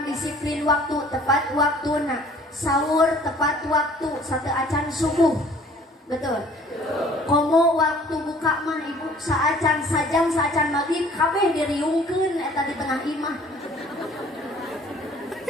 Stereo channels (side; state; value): both; normal; correlation 0.53